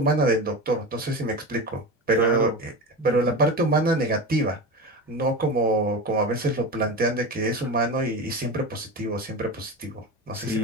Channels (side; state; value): both; normal; correlation 0.25